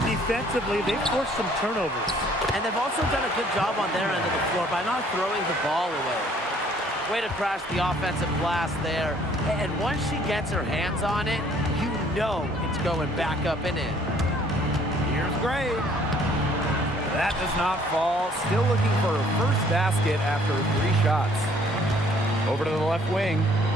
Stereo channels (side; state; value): both; normal; correlation 0.60